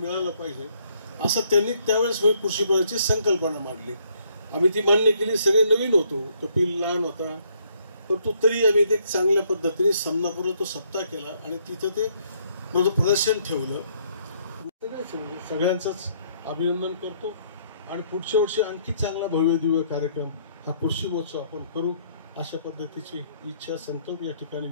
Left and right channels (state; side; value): inverted; both; correlation -0.68